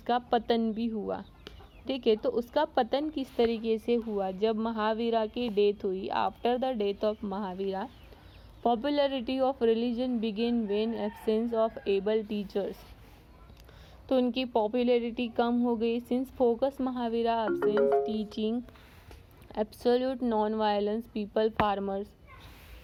पतन भी हुआ। ठीक है, तो उसका पतन किस तरीके से हुआ, जब महावीरा की डेथ हुई। After the death of Mahavira, popularity of religion begin when absence of able teachers. तो उनकी पॉपुलैरिटी कम हो गई since focus Mahavira absence teaching absolute non violence people farmers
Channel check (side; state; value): both; identical; correlation 1.00